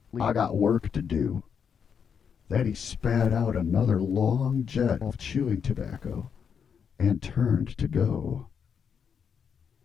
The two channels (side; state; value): right; quieter; 7.0 dB